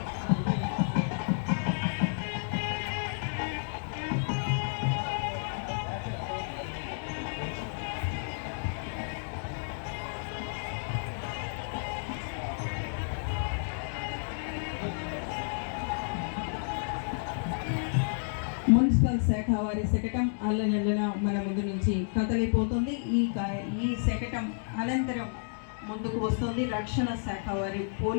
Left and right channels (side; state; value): right; silent; digital silence